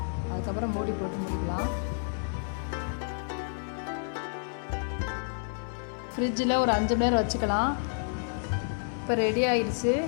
அதுக்கப்புறம் மூடி போட்டு முடிக்கலாம். ஃப்ரிட்ஜில் ஒரு 5 மணி நேரம் வச்சுக்கலாம். இப்போ ரெடி ஆகிடுச்சு.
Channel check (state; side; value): silent; right; 58 dB below the other